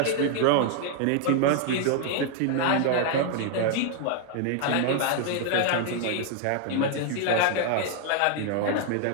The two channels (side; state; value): both; different; correlation 0.00